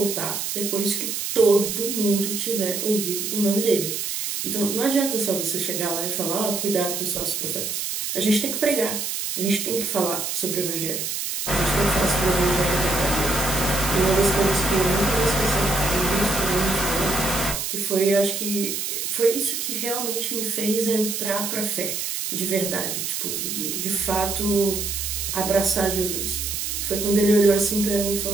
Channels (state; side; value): noise; right; hiss, 3 dB below the sound